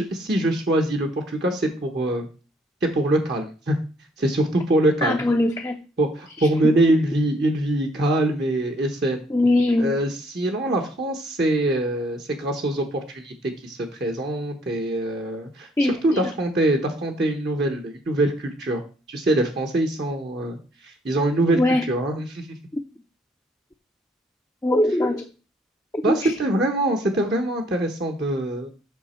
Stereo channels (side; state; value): both; normal; correlation 0.65